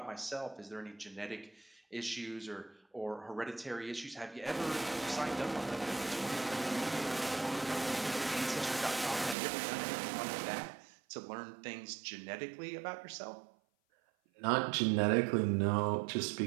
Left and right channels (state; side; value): drops out; left; at 9.3 s